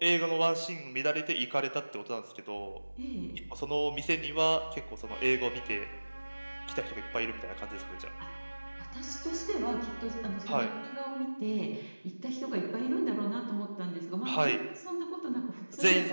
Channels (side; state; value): both; inverted; correlation -1.00